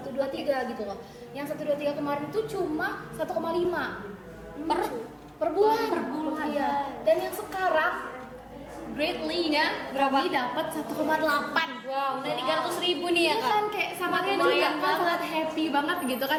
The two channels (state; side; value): identical; both; correlation 1.00